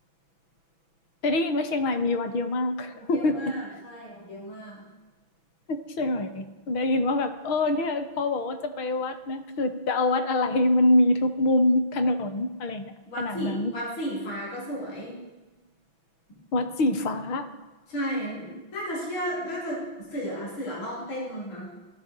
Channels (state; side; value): late; right; 6.0 ms